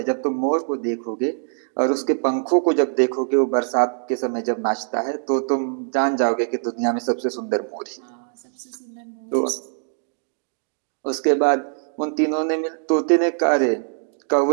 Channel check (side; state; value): left; silent; digital silence